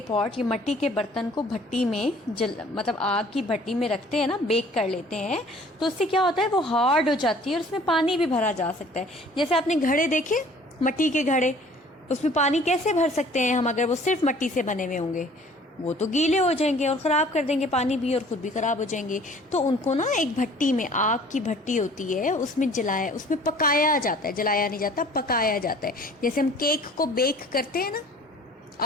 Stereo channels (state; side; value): normal; both; correlation 0.52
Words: पॉट, ये मिट्टी के बर्तन को भट्टी में मतलब आग की भट्टी में रखते हैं ना, बेक कर लेते हैं, तो उससे क्या होता है, वो हार्ड हो जाती है और उसमें पानी भी भरा जा सकता है। जैसे आपने घड़े देखे, मिट्टी के घड़े, उसमें पानी कैसे भर सकते हैं हम अगर वो सिर्फ मिट्टी से बने हुए होंगे? वो तो गीले हो जाएंगे और ख़राब कर देंगे पानी भी, और ख़ुद भी ख़राब हो जाएंगे। तो उनको ना एक भट्टी में, आग की भट्टी होती है, उसमें पकाया जाता है, जलाया नहीं जाता, पकाया जाता है। जैसे हम केक को बेक करते हैं ना